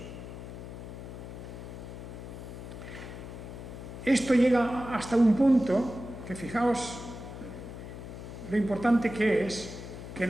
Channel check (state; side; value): noise; left; hum, 10 dB below the sound